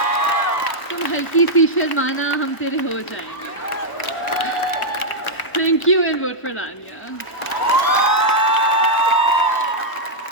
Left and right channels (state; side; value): late; right; 1.0 ms